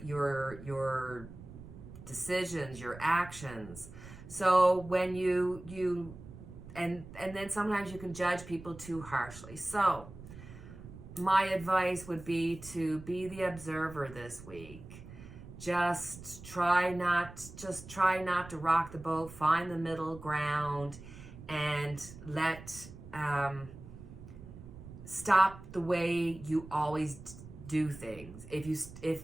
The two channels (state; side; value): noise; right; rumble, 15 dB below the sound